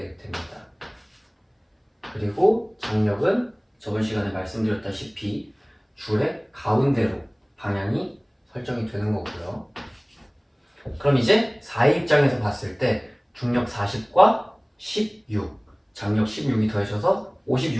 됩니다. 그리고 장력은 저번 시간에 말씀드렸다시피 줄의 가운데로 방향이 설정이 되는 거고요. 그럼 이제 4의 입장에서 봤을 때 중력 40과 16, 장력 16이 더해져서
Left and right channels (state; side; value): identical; both; correlation 1.00